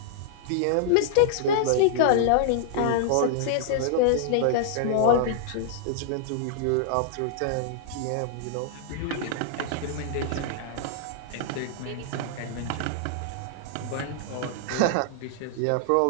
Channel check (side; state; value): both; different; correlation -0.01